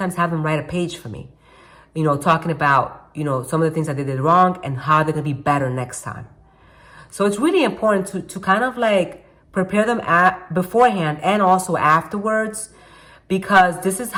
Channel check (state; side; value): identical; both; correlation 1.00